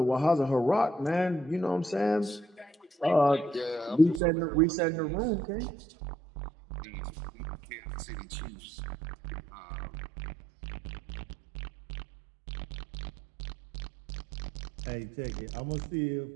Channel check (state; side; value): drops out; left; at 4.2 s